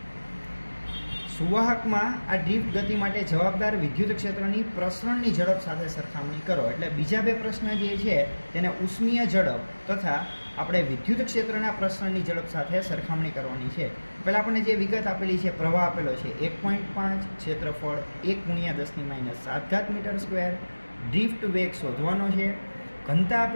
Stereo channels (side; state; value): both; inverted; correlation -1.00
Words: સુવાહકમાં આ ડ્રિફ્ટ ગતિ માટે જવાબદાર વિદ્યુત ક્ષેત્રની પ્રસરણની ઝડપ સાથે સરખામણી કરો. એટલે બીજા બે પ્રશ્ન જે છે તેને ઉષ્મીય ઝડપ તથા આપણે વિદ્યુત ક્ષેત્રના પ્રસરણની ઝડપ સાથે સરખામણી કરવાની છે. પહેલાં આપણને જે વિગત આપેલી છે, પ્રવાહ આપેલો છે 1.5, ક્ષેત્રફળ 1 × 10⁻7 મીટર સ્ક્વેર, ડ્રિફ્ટ વેગ શોધવાનો છે, ઘનતા